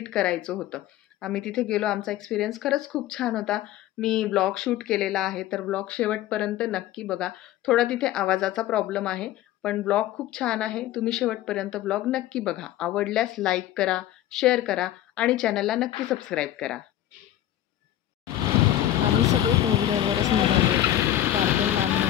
करायचं होतं. आम्ही तिथे गेलो. आमचा एक्सपिरियन्स खरंच खूप छान होता. मी ब्लॉग शूट केलेला आहे, तर ब्लॉग शेवटपर्यंत नक्की बघा. थोडा तिथे आवाजाचा प्रॉब्लेम आहे, पण ब्लॉग खूप छान आहे. तुम्ही शेवटपर्यंत ब्लॉग नक्की बघा. आवडल्यास लाईक करा, शेअर करा आणि चॅनलला नक्की सबस्क्राईब करा. आम्ही सगळे टू व्हीलरवरच निघालो होतो. फार काही लांब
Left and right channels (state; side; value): quieter; right; 12.9 dB